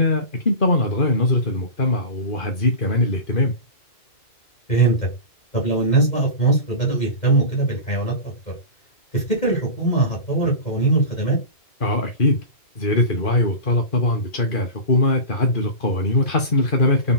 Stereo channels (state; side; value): late; right; 2.4 ms